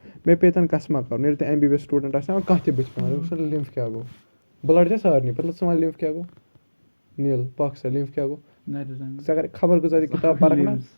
मे पेतन कसमा कर MBBS स्टूडेंट कह बच पे लिम्फ क्या गो ब्लड सारे पता वन लिम्फ क्या गो नील पक सा लिम्फ क्या गो अगर खबर गुजारी किताब पढ़ ना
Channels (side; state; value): both; inverted; correlation -1.00